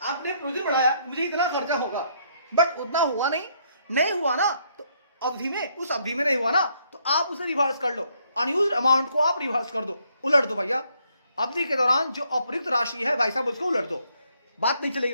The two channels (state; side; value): inverted; both; correlation -0.71